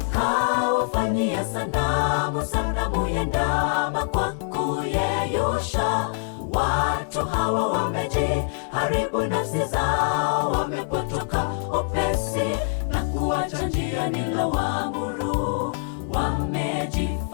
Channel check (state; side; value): silent; right; 62 dB below the other